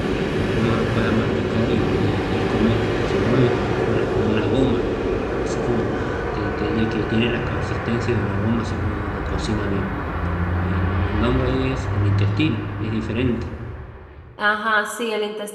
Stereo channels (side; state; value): both; identical; correlation 1.00